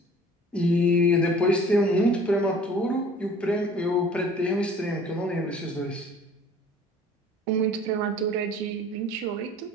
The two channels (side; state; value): both; normal; correlation 0.49